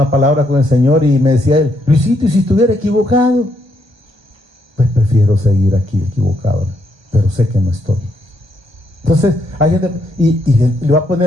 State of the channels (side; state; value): left; late; 1.1 ms